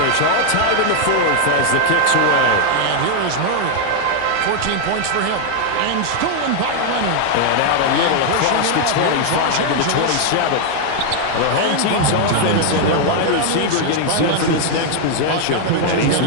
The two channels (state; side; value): different; both; correlation 0.00